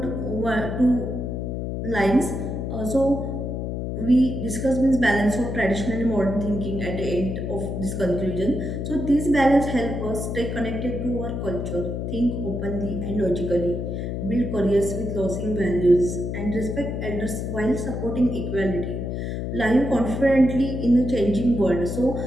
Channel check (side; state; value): left; noise; hum, 3 dB below the sound